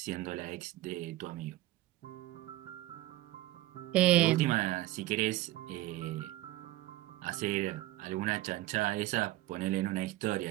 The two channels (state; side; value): quieter; left; 16.6 dB